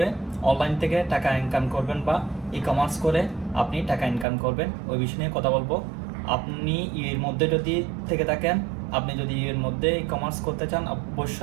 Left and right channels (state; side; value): drops out; left; at 4.2 s